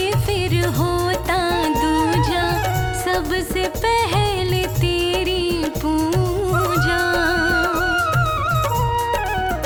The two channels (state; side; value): identical; both; correlation 1.00